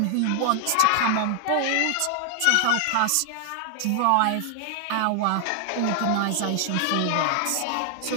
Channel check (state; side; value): different; both; correlation 0.00